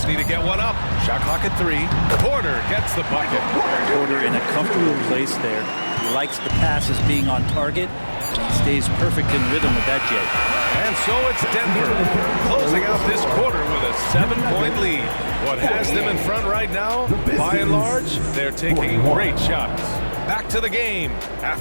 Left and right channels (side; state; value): both; inverted; correlation -1.00